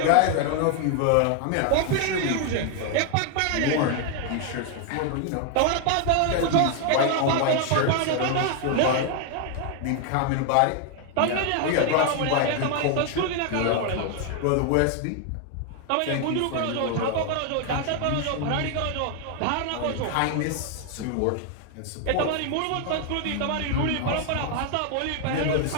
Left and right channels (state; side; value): different; both; correlation 0.00